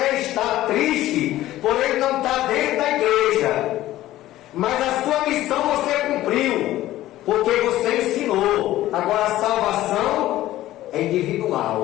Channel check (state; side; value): quieter; right; 14.9 dB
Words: estar triste por ele não estar dentro da igreja, mas a sua missão você cumpriu, porque você ensinou. Agora a salvação é